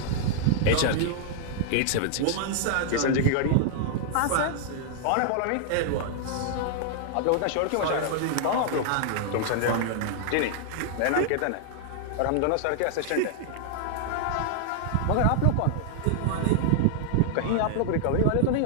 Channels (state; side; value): different; both; correlation -0.01